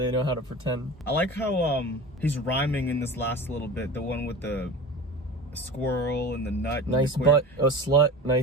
know how to pretend. I like how he's rhyming in this last little bit. The one with the squirrel and the nut. Nice butt, a slut.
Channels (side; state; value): both; normal; correlation 0.33